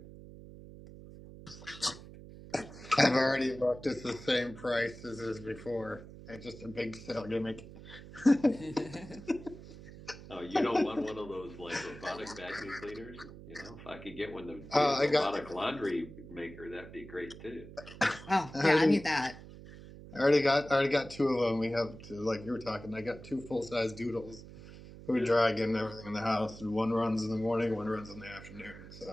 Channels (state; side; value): noise; right; hum, 16 dB below the sound